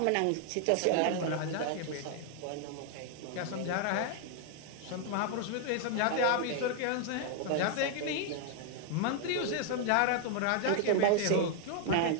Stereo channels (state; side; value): different; both; correlation 0.00